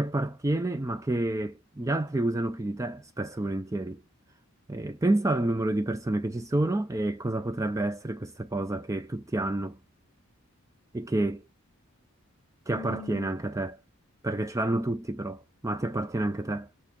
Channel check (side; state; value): both; normal; correlation 0.84